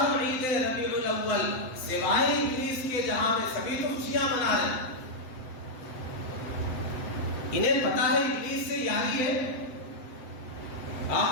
عید ربیع الاول، سوائے ابلیس کے جہاں میں سبھی تو خوشیاں منا رہے ہیں. انہیں پتا ہے ابلیس سے یاری ہے.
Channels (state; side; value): late; right; 7.9 ms